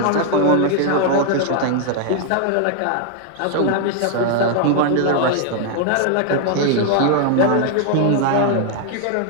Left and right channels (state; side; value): different; both; correlation 0.00